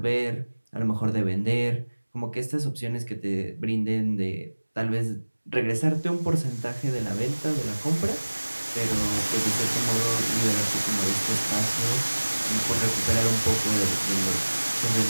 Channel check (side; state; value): both; inverted; correlation -1.00